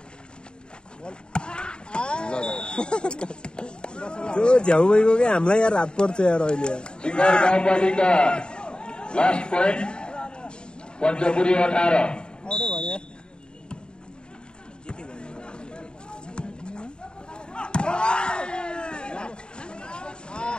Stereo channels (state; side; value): late; right; 0.049 ms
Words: त्यो झ्याउ भइगयो क्या हामीलाई यार हात पर्छ यार अहिले सिंगार गाउँपालिका लास्ट पोइन्ट पञ्चपुरी 18